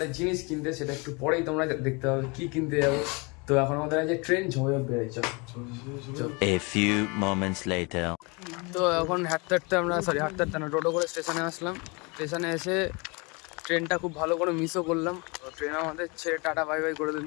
জিনিস কিনতে, সেটা একটু পরেই তোমরা দেখতে হবে কি কিনতে যাবো। তো এখন আমাদের আছে ট্রেন ঝমঝম বেড়েছে। A few moments later. তো এখন হাঁটতে আমরা হাঁটতে না, টোটো করে স্টেশনে আসলাম। স্টেশনে এসে ট্রেনটা খুব ভালো করে মিসও করলাম। তো ট্রেন আমাদের ছেড়ে টাটা বাই বাই করে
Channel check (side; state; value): right; quieter; 29.1 dB